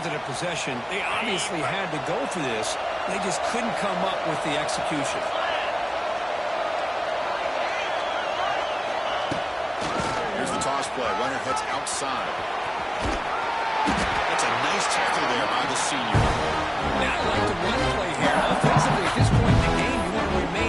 than a possession, they obviously had to go for this. They just couldn't come up with the execution. Here's the toss play. Runner heads outside. That's a nice tackle there by the senior. Now, I like the run play here. Offensively, at this point in the game, you want to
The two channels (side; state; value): both; identical; correlation 1.00